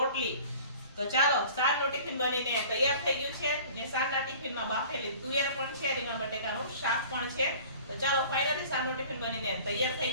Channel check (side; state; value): both; inverted; correlation -0.46